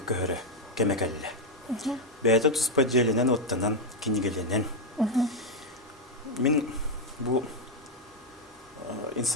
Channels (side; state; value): both; normal; correlation 0.03